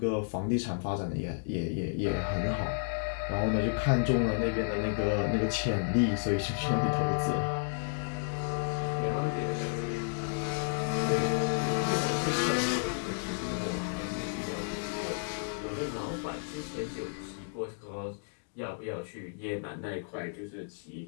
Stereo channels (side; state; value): right; silent; digital silence